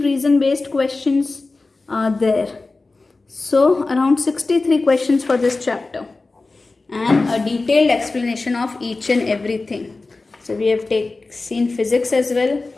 based questions are there. So around 63 questions for this chapter and a detailed explanation of each and everything. So we have seen physics as well.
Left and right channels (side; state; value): right; quieter; 3.5 dB